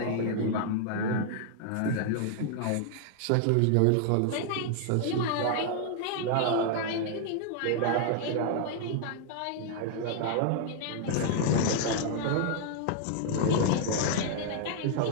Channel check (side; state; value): both; different; correlation 0.00